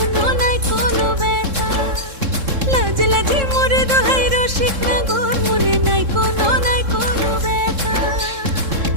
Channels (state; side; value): late; left; 3.7 ms